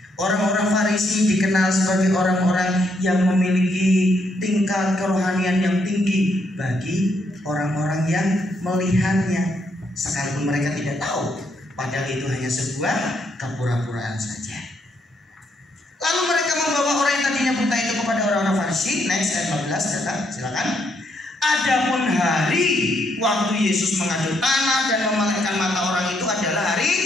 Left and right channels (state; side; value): normal; both; correlation 0.75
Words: Orang-orang Farisi dikenal sebagai orang-orang yang memiliki tingkat kerohanian yang tinggi bagi orang-orang yang melihatnya, sekalipun mereka tidak tahu, padahal itu hanya sebuah kepura-puraan saja. Lalu mereka membawa orang yang tadinya buta itu kepada orang-orang Farisi. Next ayat 15, silakan. Adapun hari waktu Yesus mengaduk tanah dan memelihara mata orang itu adalah hari